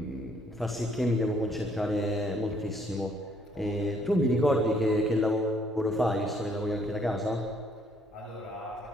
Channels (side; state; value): both; normal; correlation 0.66